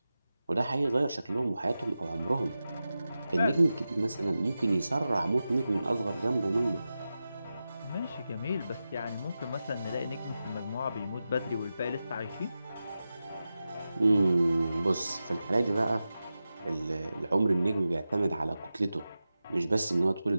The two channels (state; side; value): inverted; both; correlation -0.93